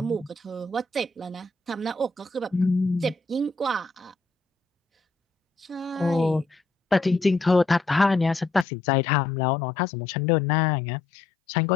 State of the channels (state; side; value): drops out; right; at 8.7 s